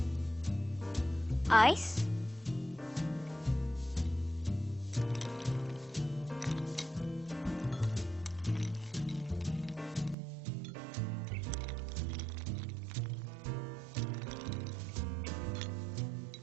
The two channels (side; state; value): left; drops out; at 10.2 s